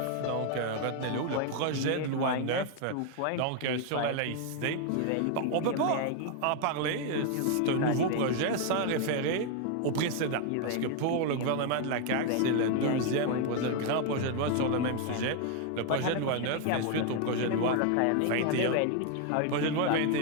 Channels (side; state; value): both; different; correlation 0.01